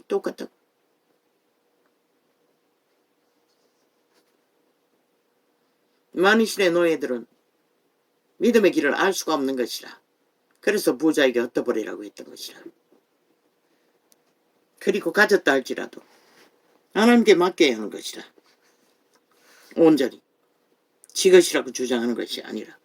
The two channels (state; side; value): identical; both; correlation 1.00